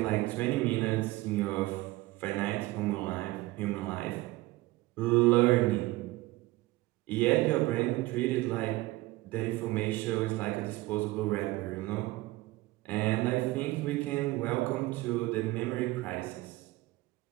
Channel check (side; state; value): left; quieter; 19.3 dB